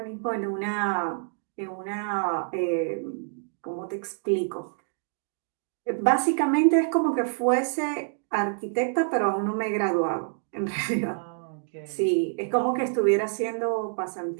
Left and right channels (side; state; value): left; silent; digital silence